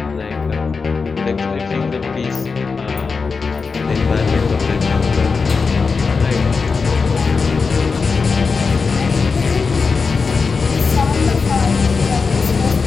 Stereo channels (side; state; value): right; quieter; 4.8 dB